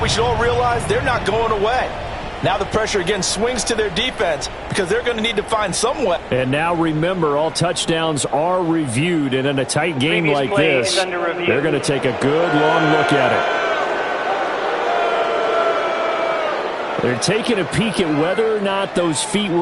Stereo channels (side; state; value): both; identical; correlation 1.00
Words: we should all realize they're not going away. Now the pressure again swings to their defense because they're going to need to find some way. And now remember, all touchdowns are reviewed, and in a tight game like this, they're going to take a good long look at it. They're taking a peek at whether or not those feet